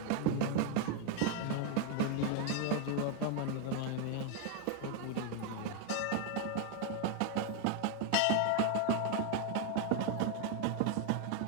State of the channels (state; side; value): different; both; correlation 0.00